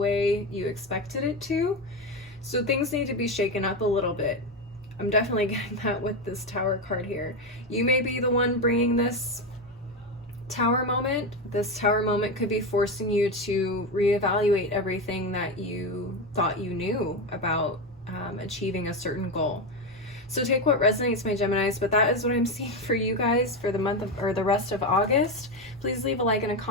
you expected it to. So things need to be shaken up a little bit. I'm definitely getting that with this Tower card here. You may be the one bringing this Tower moment. This Tower moment could be forcing you to reevaluate everything that you thought you knew about achieving a certain goal. So take what resonates, my Geminis, but that is what I'm seeing for you guys for the month of, or the rest of August. Please leave a like and a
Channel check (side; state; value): both; normal; correlation 0.14